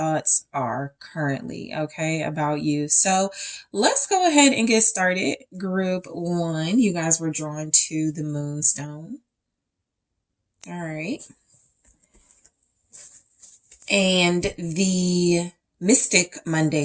are currently, okay, about you. So let's go ahead and get started. Group one, you guys were drawn to the Moonstone. All right. And the Mystic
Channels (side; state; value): both; identical; correlation 1.00